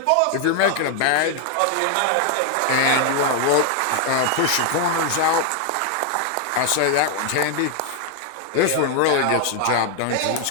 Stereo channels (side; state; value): both; different; correlation 0.00